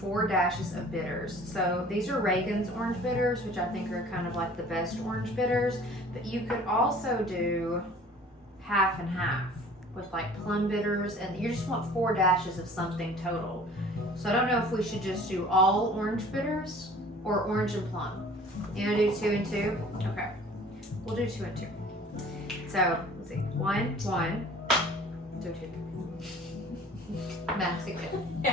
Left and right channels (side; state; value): both; normal; correlation 0.48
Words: dashes of bitters. So these are Reagan's orange bitters, which I think are kind of like the best orange bitters. But you could also do half and half with like plum bitters, and you just want 4 dashes of something total. So I don't know if we should just do all orange bitters or orange and plum. You gonna do 2 and 2? Okay, we'll do 2 and 2. So let's see, 1, 2, 2. Math's good.